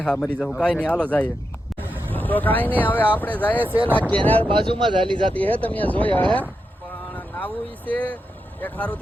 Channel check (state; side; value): normal; both; correlation 0.87